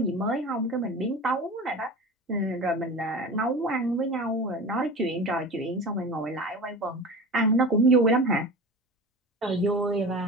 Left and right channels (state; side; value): normal; both; correlation 0.33